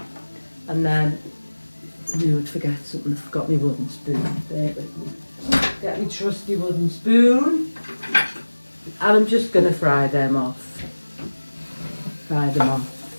And then I knew I'd forget something. I forgot my wooden spoon. There with me. Get my trusty wooden spoon. And I'm just going to fry them off. Just,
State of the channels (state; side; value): inverted; both; correlation -1.00